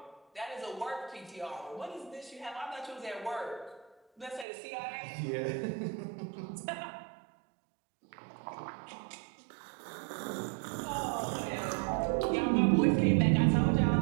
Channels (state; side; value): drops out; left; at 4.5 s